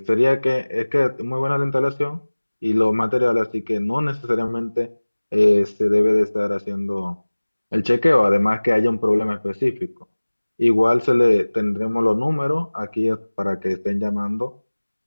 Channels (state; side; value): inverted; both; correlation -1.00